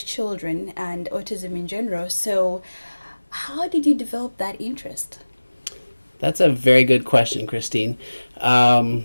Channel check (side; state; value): both; inverted; correlation -1.00